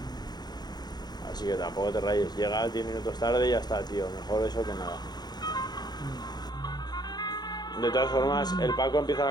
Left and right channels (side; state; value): right; late; 0.20 ms